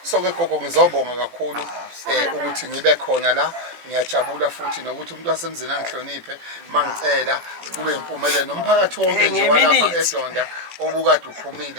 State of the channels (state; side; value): late; left; 17 ms